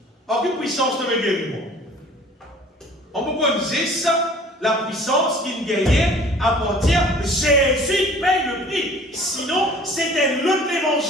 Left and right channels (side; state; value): both; normal; correlation 0.49